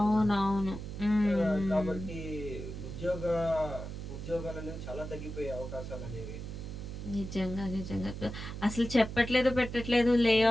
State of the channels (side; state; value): right; noise; hum, 8 dB below the sound